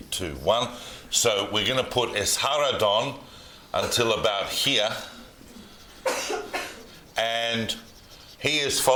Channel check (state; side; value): identical; both; correlation 1.00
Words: 2, 1. So we're going to put Esarhaddon until about here, and he is